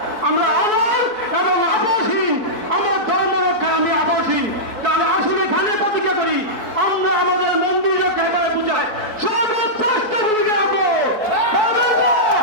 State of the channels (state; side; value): late; left; 4.6 ms